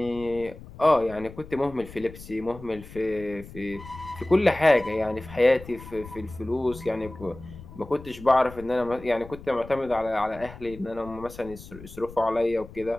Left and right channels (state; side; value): noise; left; rumble, 16 dB below the sound